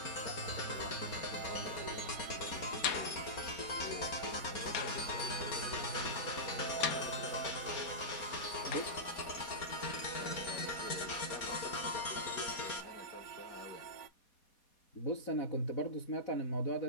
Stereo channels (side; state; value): right; late; 4.2 ms